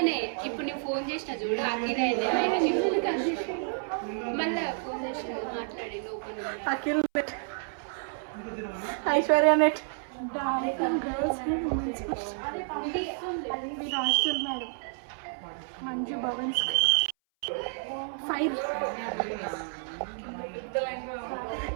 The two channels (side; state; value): left; silent; 58 dB below the other